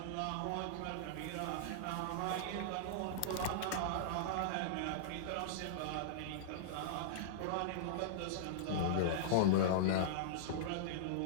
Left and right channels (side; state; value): both; different; correlation -0.02